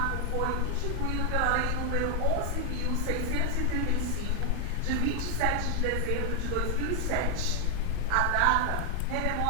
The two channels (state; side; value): different; both; correlation 0.00